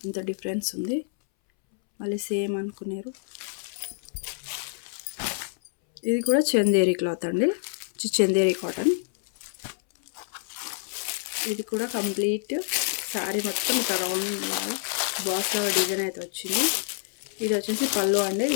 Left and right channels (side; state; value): right; silent; 60 dB below the other